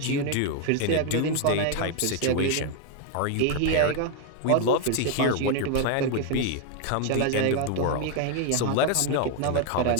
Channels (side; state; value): both; different; correlation 0.01